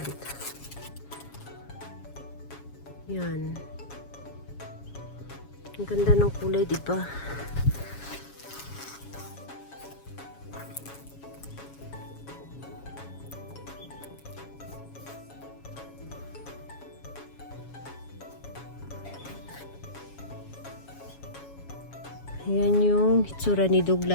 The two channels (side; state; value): right; late; 7.2 ms